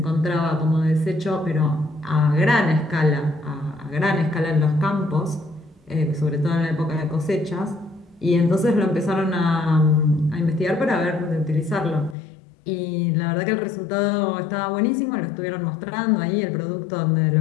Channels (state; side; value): drops out; right; at 12.2 s